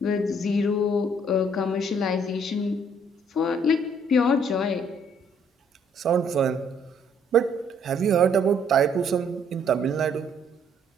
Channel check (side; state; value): both; normal; correlation 0.65